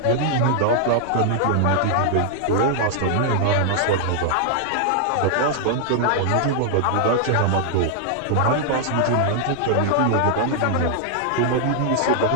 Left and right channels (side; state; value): both; different; correlation -0.01